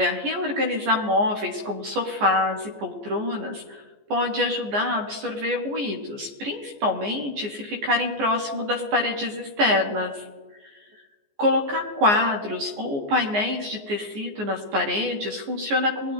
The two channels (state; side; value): late; left; 14 ms